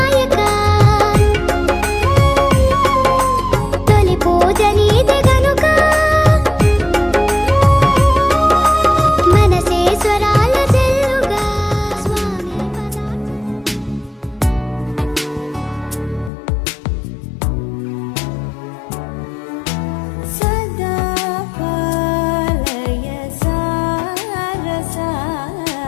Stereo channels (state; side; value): drops out; right; at 16.3 s